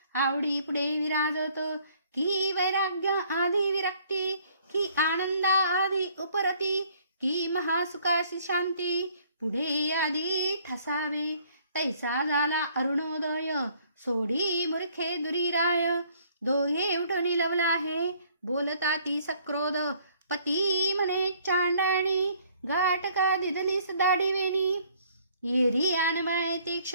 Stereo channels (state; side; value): inverted; both; correlation -0.61